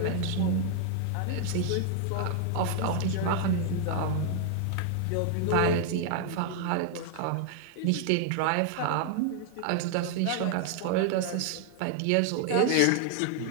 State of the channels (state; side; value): different; both; correlation 0.00